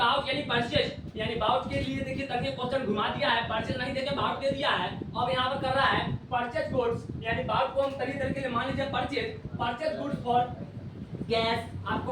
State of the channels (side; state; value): both; identical; correlation 1.00